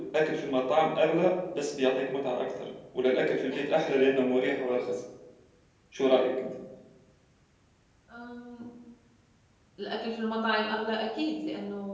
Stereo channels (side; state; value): both; identical; correlation 1.00